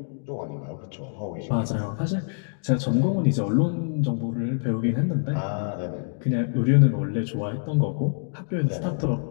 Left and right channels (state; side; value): silent; right; digital silence